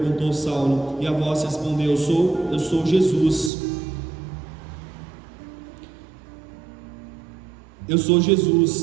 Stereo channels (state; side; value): drops out; left; at 3.5 s